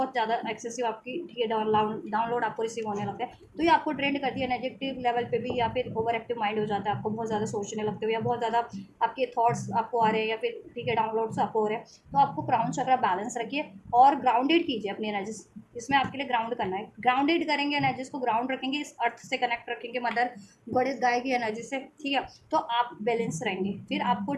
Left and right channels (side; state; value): both; identical; correlation 1.00